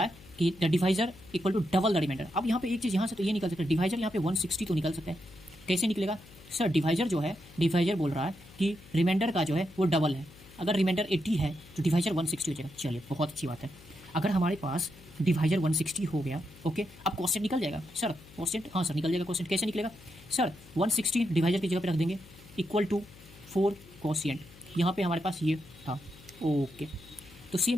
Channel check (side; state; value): left; noise; hum, 21 dB below the sound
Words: है कि the divisor equal to double the remainder. अब यहाँ पे एक चीज़ यहाँ से तो ये निकल सकता है, डिवाइजर यहाँ पे 160 तो निकल सकता है। कैसे निकलेगा सर? डिवाइजर जो है, डिवाइजर बोल रहा है कि रिमाइंडर का जो है वो डबल है। अगर रिमाइंडर 80 है तो डिवाइजर 160 हो जाएगा। चलिए बहुत अच्छी बात है। अगर हमारे पास डिवाइजर 160 हो गया, ओके, अब क्वेश्चन निकल जाएगा सर। क्वेश्चन, हाँ सर निकल जाएगा। क्वेश्चन कैसे निकलेगा सर? 160 डिवाइजर की जगह पे रख देंगे, इक्वल टू 4 कोशिएंट। यहाँ पे हमारे पास ये था, ओके। तो